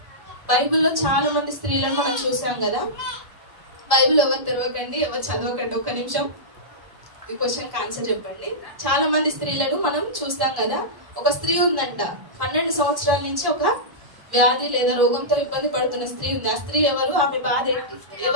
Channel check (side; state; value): left; late; 1.1 ms